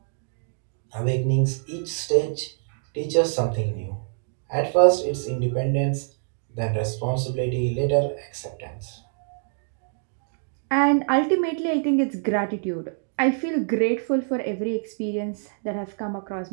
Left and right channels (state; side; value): silent; left; digital silence